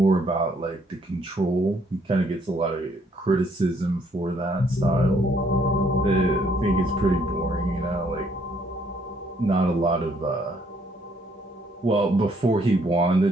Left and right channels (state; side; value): normal; both; correlation 0.67